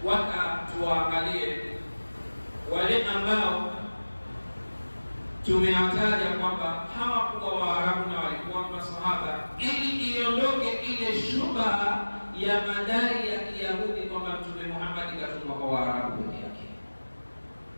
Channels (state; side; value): inverted; both; correlation -1.00